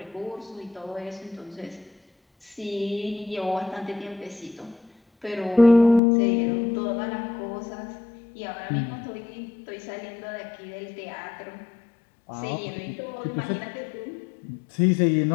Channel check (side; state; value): right; drops out; at 6.0 s